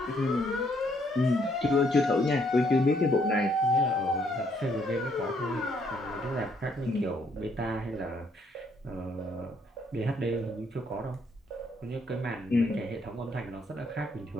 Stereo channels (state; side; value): normal; both; correlation 0.70